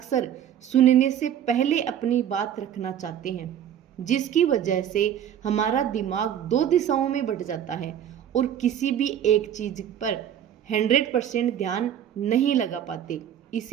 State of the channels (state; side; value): quieter; left; 9.9 dB